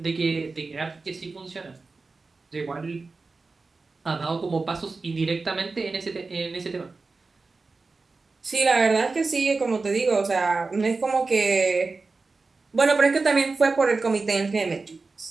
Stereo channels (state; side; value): quieter; left; 3.9 dB